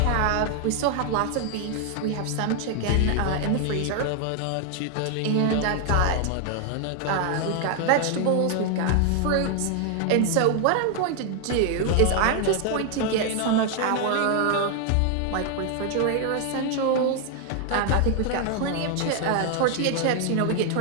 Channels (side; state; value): both; different; correlation 0.00